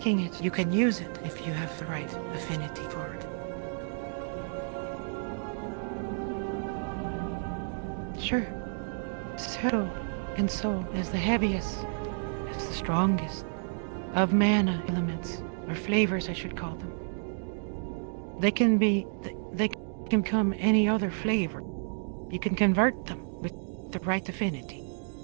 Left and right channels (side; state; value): left; silent; digital silence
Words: it, you can use it if you have the right affinity for it. Sorry. Might have headache there. Could you repeat that, please? Sure. Shadow and Soul as the heaviest, as the strongest of mana elements, or flavors I should call them. At least the most important. They can become any other flavor. You can convert them with the right affinity.